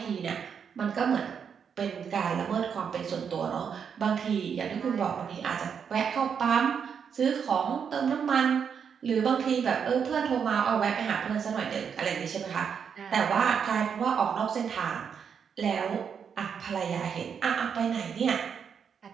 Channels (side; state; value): left; quieter; 7.1 dB